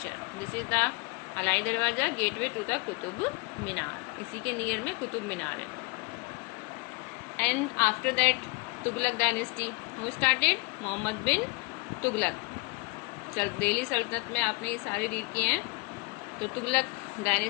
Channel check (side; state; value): right; quieter; 28.0 dB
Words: This is the Alai Darwaza, gateway to the Qutub Minar. इसी के near में कुतुब मीनार है. And after that Tughlaq dynasty. Who started? Mohammad bin Tughlaq. Delhi Sultanate में आपने ये सारे read किए हैं. तो Tughlaq